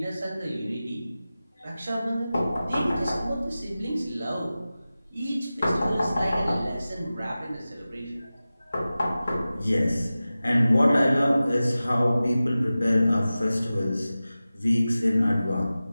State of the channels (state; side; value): inverted; both; correlation -0.96